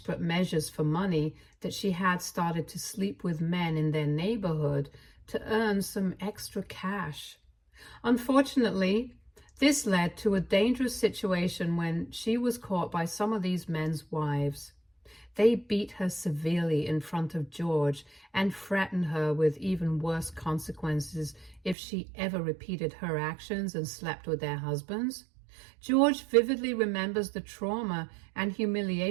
measures for money that she had started to sleep with men in their neighborhood to earn some extra cash. Unfortunately, this led to a dangerous situation when she was caught by some of these men's wives. They beat her severely in front of George and threatened her with even worse consequences if she ever repeated her actions and slept with their husbands. George vividly remembers the trauma and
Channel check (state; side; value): drops out; left; at 21.8 s